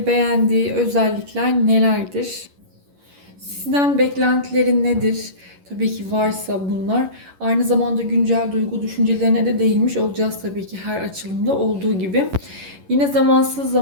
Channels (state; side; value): late; left; 11 ms